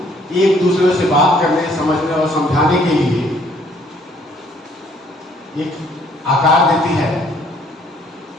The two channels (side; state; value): both; normal; correlation 0.62